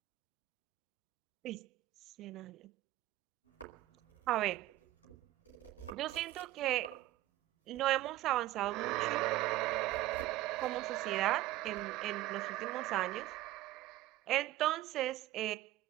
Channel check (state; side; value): quieter; left; 15.9 dB